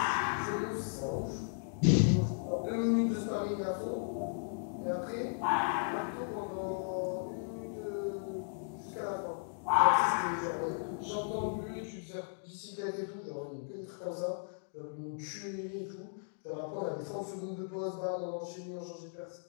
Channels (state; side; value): silent; right; digital silence